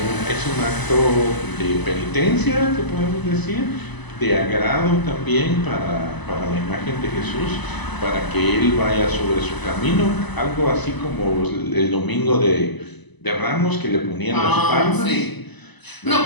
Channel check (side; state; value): right; late; 1.0 ms